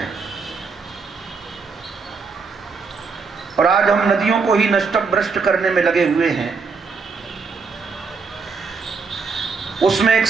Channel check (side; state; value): left; quieter; 4.9 dB